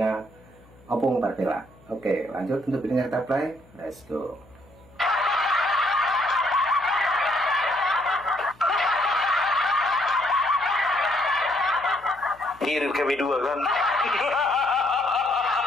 Opung Marvelak. Oke, lanjut untuk videonya kita play. Let's go. Kirim kami dua kan.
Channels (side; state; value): left; noise; hum, 27 dB below the sound